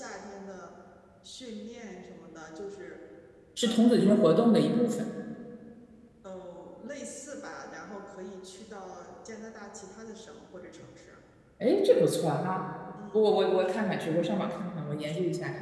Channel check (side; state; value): both; identical; correlation 1.00